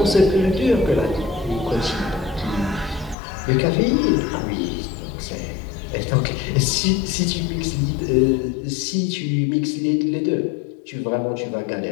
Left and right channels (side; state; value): right; drops out; at 3.2 s